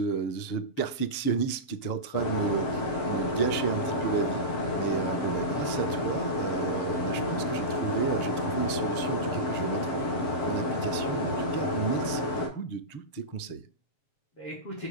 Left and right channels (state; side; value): late; right; 6.8 ms